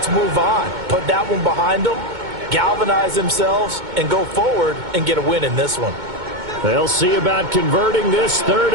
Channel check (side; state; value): left; late; 2.2 ms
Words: move on. Put that one behind them, galvanize themselves, and go forward and get a win in this one. They'll see about converting this 3rd